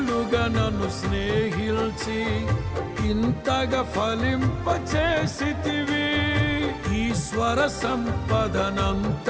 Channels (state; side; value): identical; both; correlation 1.00